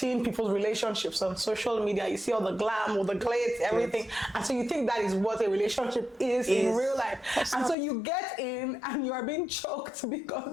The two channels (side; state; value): right; drops out; at 7.8 s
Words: people's relationships on social media. You see all the glam, all the glitz, everything, and so you think that is what a relationship is in real life. And so you get in and you are being choked